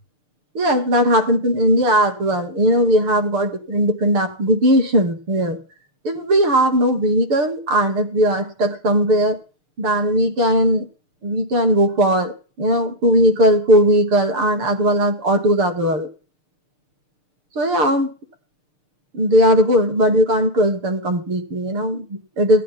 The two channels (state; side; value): late; left; 6.6 ms